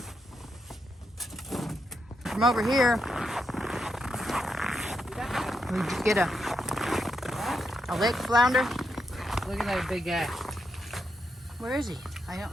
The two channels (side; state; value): both; normal; correlation 0.83